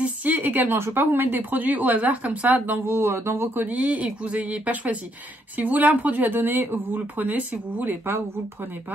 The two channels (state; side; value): normal; both; correlation 0.73